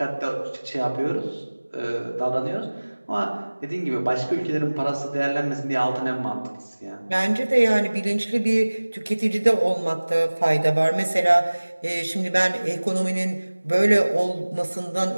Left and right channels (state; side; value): inverted; both; correlation -1.00